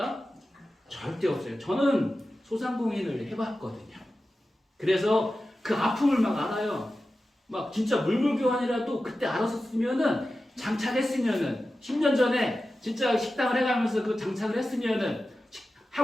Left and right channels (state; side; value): normal; both; correlation 0.94